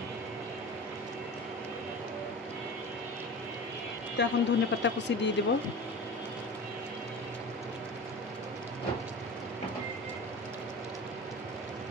তো এখন ধনেপাতা কুচি দিয়ে দেব।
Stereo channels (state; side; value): normal; both; correlation 0.33